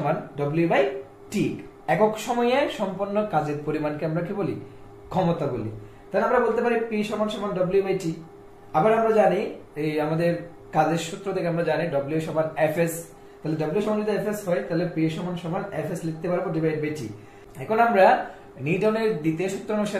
W/T। একক সময়ে সম্পন্ন কাজের পরিমাণকে আমরা কি বলি, ক্ষমতা বলি। তাহলে আমরা বলতে পারি P সমান W/T। আবার আমরা জানি এই আমাদের কাজের সূত্র থেকে আমরা জানি W সমান Fs। তাহলে W সমান যদি Fs হয় তাহলে P সমান Fs লিখতে পারবো /T। এখন আমরা নিউটনের দ্বিতীয় সূত্র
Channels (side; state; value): both; identical; correlation 1.00